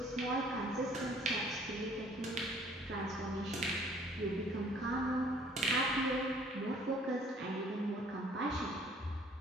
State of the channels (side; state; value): both; normal; correlation 0.57